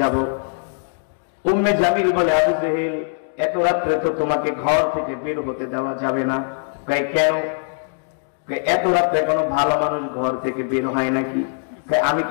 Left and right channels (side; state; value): right; silent; 65 dB below the other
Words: উম্মে জামিল বলে, আবু জেহেল এত রাত্রে তো তোমাকে ঘর থেকে বের হতে দেওয়া যাবে না। কেন? এত রাত্রে কোনো ভালো মানুষ ঘর থেকে বের হয় নাকি? আমি